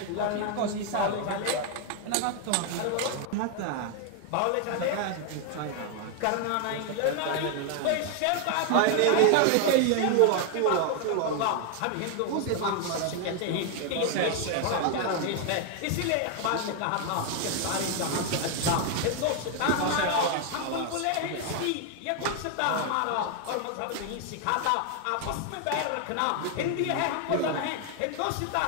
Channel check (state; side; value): different; both; correlation 0.00